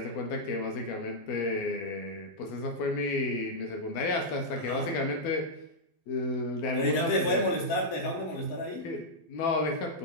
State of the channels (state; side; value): late; right; 12 ms